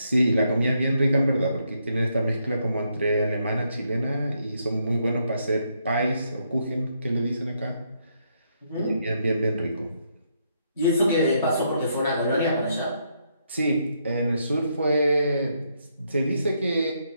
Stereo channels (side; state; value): both; inverted; correlation -0.76